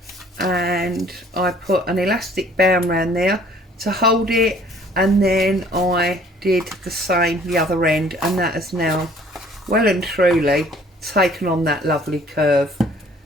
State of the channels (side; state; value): both; normal; correlation 0.56